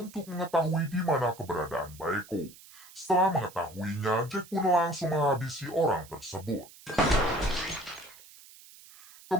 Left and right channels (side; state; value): right; noise; hiss, 21 dB below the sound